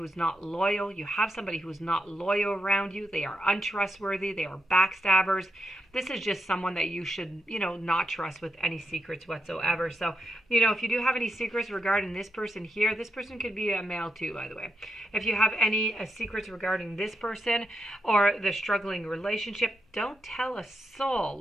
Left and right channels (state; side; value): normal; both; correlation 0.83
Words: is not loyal. You have somebody who is not loyal around you. They are untrustworthy. They are backstabbers. This is just someone that you should, not trust with any secrets whatsoever. So, if you do have any secrets regarding this person here, this person could be a male too, by the way. If you have any secrets regarding this person or the struggling relationship, don't tell a